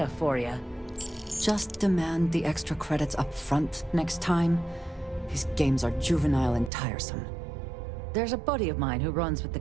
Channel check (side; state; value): left; drops out; at 6.7 s